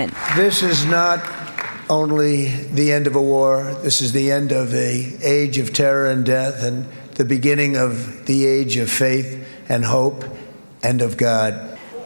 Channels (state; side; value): inverted; both; correlation -1.00